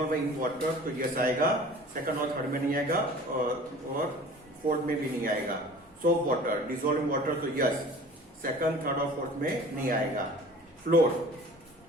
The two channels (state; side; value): normal; both; correlation 0.44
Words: इन वाटर, तो यस आएगा, सेकंड और थर्ड में नहीं आएगा, और फोर्थ में भी नहीं आएगा। Soap water, dissolve in water, तो यस, सेकंड, थर्ड और फोर्थ में नहीं आएगा। फ्लोर,